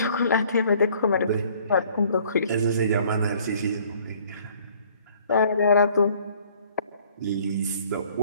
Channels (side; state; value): both; inverted; correlation -0.57